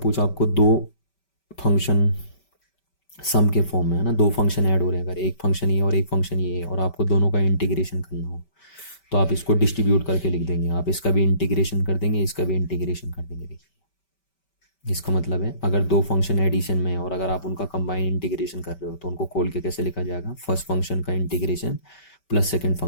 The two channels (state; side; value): late; right; 5.2 ms